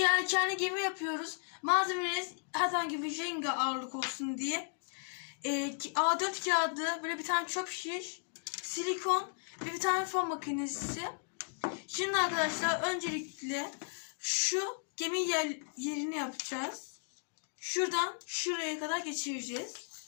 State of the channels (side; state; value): right; silent; digital silence